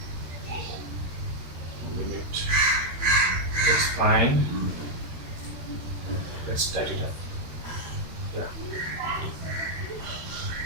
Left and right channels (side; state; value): left; late; 13 ms